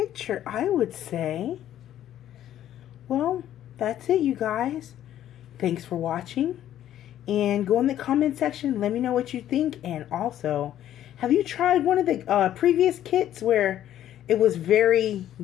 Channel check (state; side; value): quieter; right; 11.7 dB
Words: I would say. Well, that's it, you guys. Thanks for watching. And go in the comment section. Let me know what you think. And also, have you tried one of the previous kits where it was very